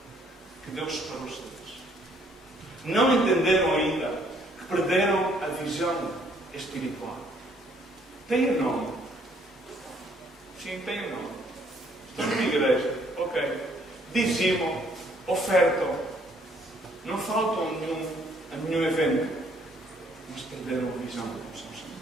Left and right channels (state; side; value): normal; both; correlation 0.65